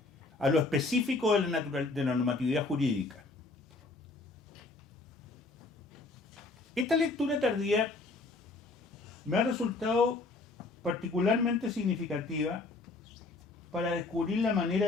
a lo específico de la normatividad jurídica. Esta lectura tardía me ha resultado particularmente significativa para descubrir la manera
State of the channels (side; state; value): right; quieter; 3.4 dB